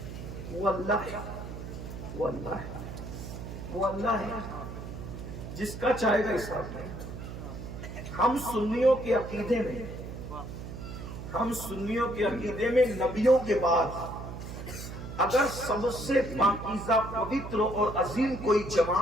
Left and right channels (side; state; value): right; noise; hum, 9 dB below the sound